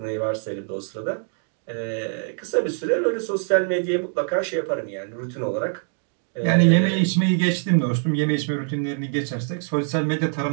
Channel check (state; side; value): silent; left; 61 dB below the other